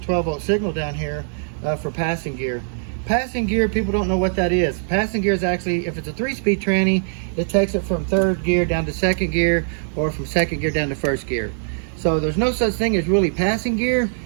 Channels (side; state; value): left; silent; digital silence